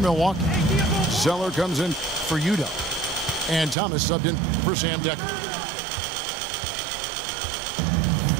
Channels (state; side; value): drops out; left; at 3.8 s